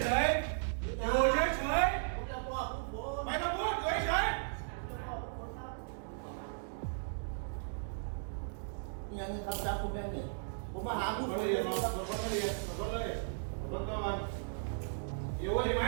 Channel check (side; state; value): left; silent; digital silence